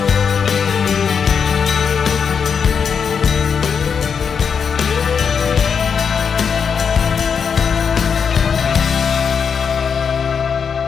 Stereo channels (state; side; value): quieter; right; 6.5 dB